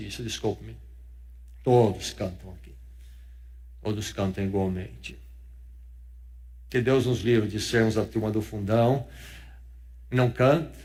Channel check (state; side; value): identical; both; correlation 1.00